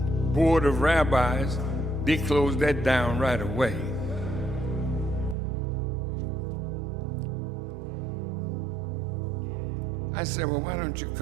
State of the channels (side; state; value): left; drops out; at 5.4 s